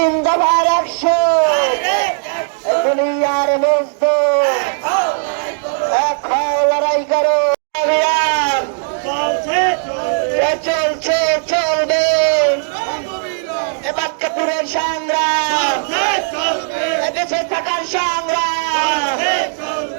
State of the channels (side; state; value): left; silent; digital silence